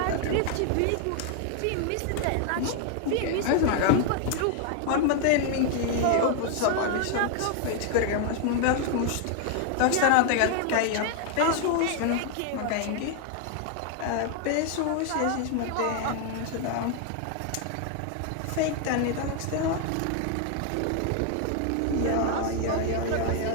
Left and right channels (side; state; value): both; different; correlation 0.00